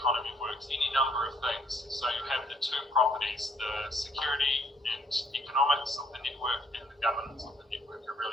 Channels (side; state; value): both; normal; correlation 0.65